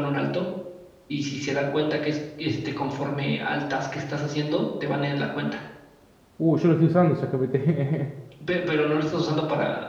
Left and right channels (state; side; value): identical; both; correlation 1.00